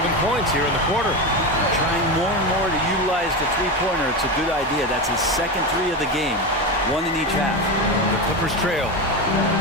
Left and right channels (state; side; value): normal; both; correlation 0.18